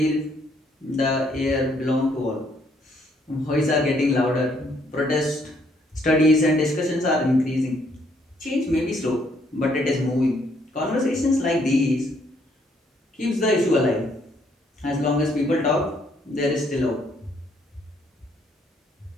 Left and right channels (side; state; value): both; normal; correlation 0.69